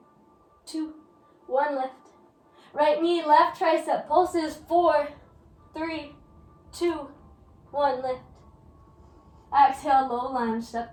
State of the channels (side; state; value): both; identical; correlation 1.00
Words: 2, 1. Lift. Right knee, left tricep, pulses. 4, 3, 2, 1. Lift. Exhale, low lunge, step